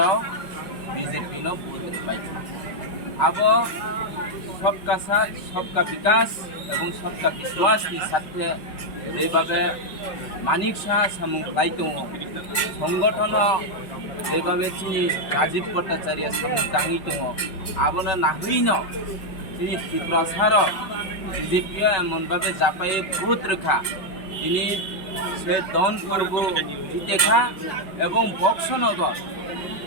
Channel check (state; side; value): late; right; 5.3 ms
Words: বিজেপি ভোট পাইছে আবো সবকা সাথ সবকা বিকাশ এবং সবকা বিশ্বাসনি সাথে যেভাবে মানিক সাহা সামুং খাই দङ সংগঠন যেভাবে তিনি রাজীব ভট্টাচার্য সামুং টাঙি দङ আবনো নাহইন তিনি ত্রিপুরাসার বিজেপি এমনভাবে জাপাই ভোট রেখা তিনি সে ধনপুরব জিতেখা এবং বক্সনগর